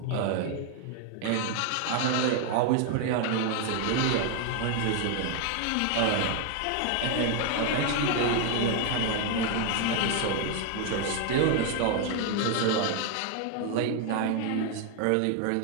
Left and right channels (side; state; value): both; different; correlation 0.00